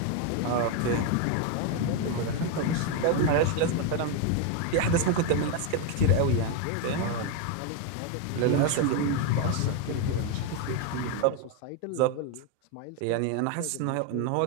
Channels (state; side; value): different; both; correlation 0.01